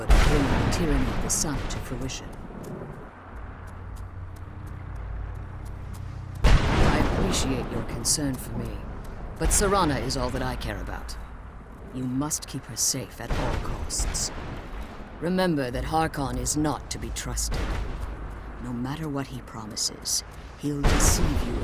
of bringing the tyranny of the sun to fruition. I appreciate your concern for me, but Serana is all that I care about. You must keep her safe at all costs. Remember that Harkon is not to be trusted. No matter what he promises, he'll deceive you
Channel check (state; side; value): identical; both; correlation 1.00